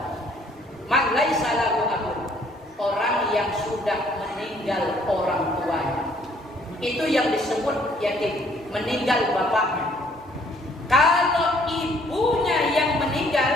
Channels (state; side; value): normal; both; correlation 0.62